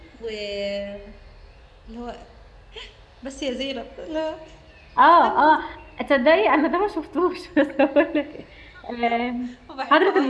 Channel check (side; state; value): both; identical; correlation 1.00